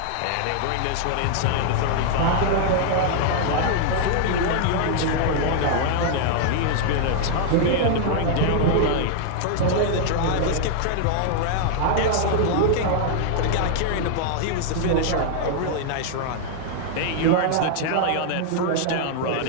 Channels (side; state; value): both; different; correlation -0.01